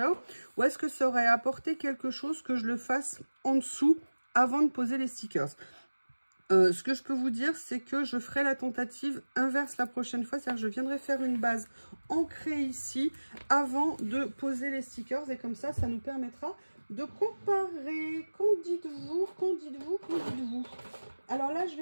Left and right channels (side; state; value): both; inverted; correlation -1.00